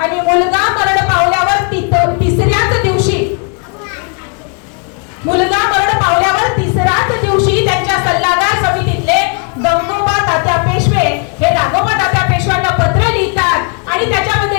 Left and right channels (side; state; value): right; quieter; 38.4 dB